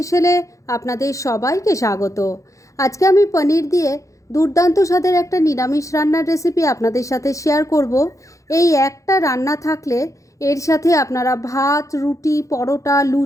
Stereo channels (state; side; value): late; right; 0.15 ms